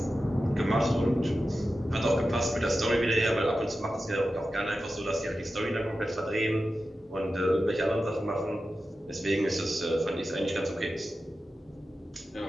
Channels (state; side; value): normal; both; correlation 0.92